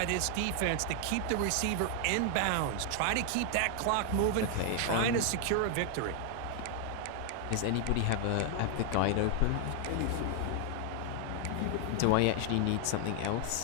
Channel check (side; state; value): both; different; correlation 0.00